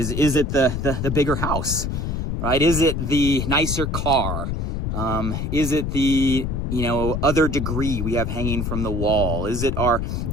it the bigger house, right? Is it the nicer car? Is it the other degree we have hanging from the wall? Is it our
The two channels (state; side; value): noise; left; rumble, 2 dB below the sound